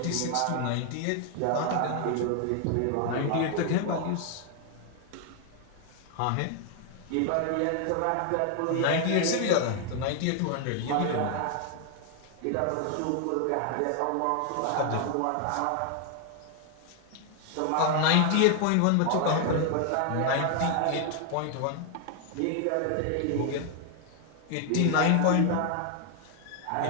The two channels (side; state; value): both; different; correlation 0.00